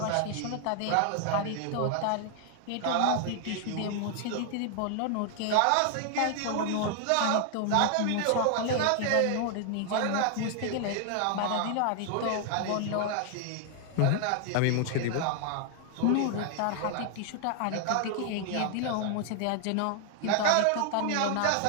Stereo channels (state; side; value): different; both; correlation 0.00